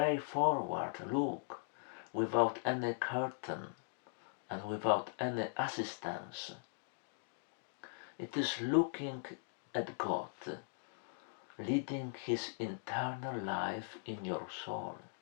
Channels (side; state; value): right; silent; digital silence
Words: look without any curtain and without any assistance. It is looking at God, leading his internal life in your soul.